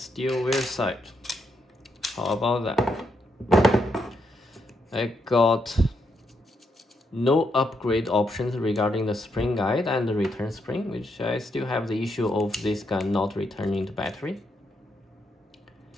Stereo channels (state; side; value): normal; both; correlation 0.79